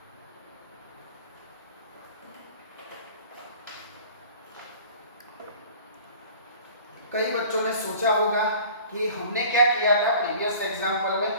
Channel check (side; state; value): both; inverted; correlation -0.46